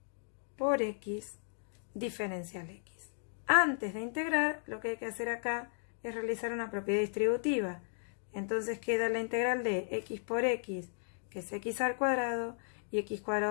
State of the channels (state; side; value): silent; right; digital silence